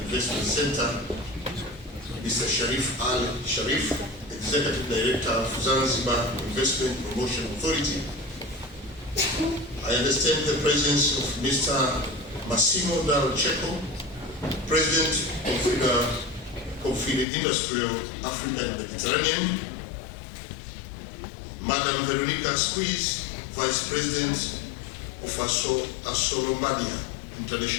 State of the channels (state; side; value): drops out; right; at 17.2 s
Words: Investment Center, Mr. Sharif Al Sharif, Executive Director of Zanzibar Investment Promotion Authority. I understand the presence of Mr. Massimo Dal Cecco, President of the Industrial Africa and Mediterranean, Madam Veronica Squeeze, Vice President of Assolombadia,